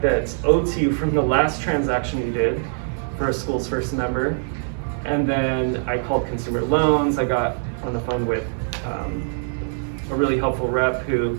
that's owed to you from the last transaction you did for a Schools First member. And then I called consumer loans, I got on the phone with a really helpful rep who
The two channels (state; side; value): silent; left; digital silence